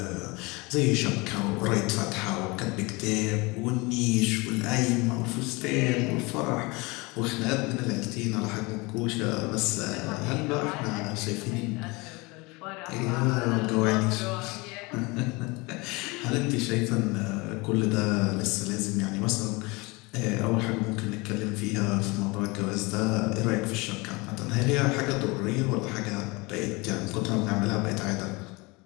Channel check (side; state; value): right; quieter; 25.3 dB